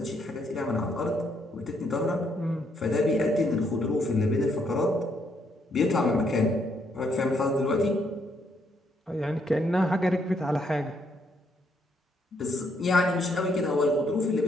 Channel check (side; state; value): both; normal; correlation 0.73